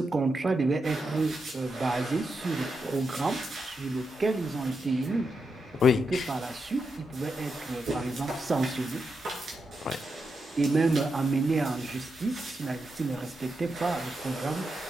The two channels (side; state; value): both; normal; correlation 0.85